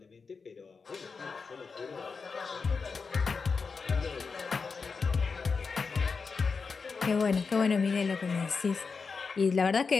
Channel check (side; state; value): right; quieter; 4.9 dB